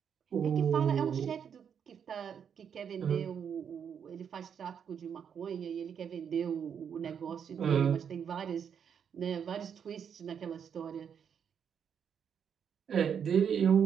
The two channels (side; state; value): left; quieter; 7.7 dB